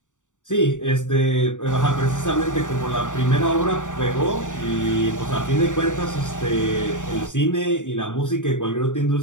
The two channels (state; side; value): late; right; 0.86 ms